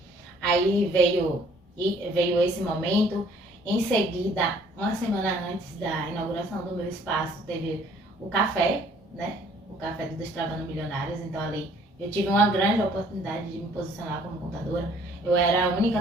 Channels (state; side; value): normal; both; correlation 0.58